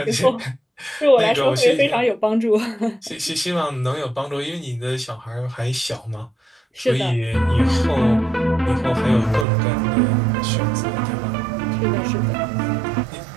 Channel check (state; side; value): drops out; left; at 9.5 s